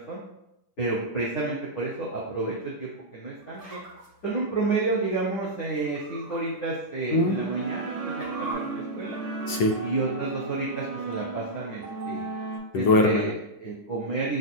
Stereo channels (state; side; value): late; right; 10 ms